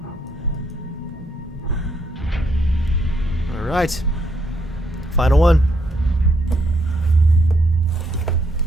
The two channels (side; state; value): both; normal; correlation 0.74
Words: All right. Final one.